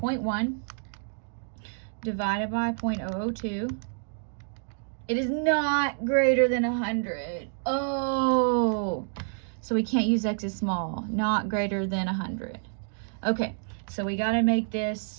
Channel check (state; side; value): silent; left; digital silence